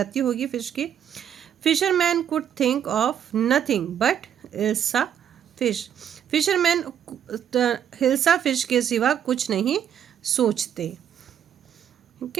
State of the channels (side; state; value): left; quieter; 9.3 dB